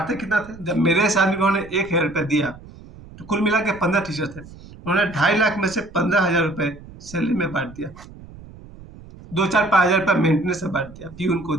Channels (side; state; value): right; noise; rumble, 19 dB below the sound